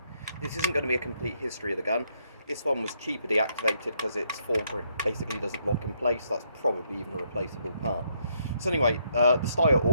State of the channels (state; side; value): inverted; both; correlation -0.73